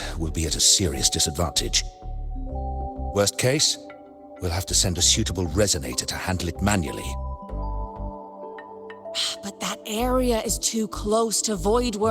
we'll be at a serious disadvantage. Worst case, we'll have to send a suitable resonator to handle it manually. But that area is too close to void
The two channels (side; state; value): both; identical; correlation 1.00